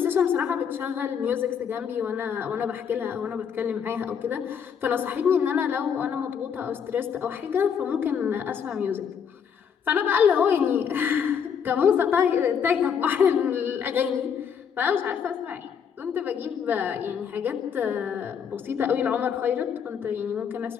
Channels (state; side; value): quieter; right; 7.4 dB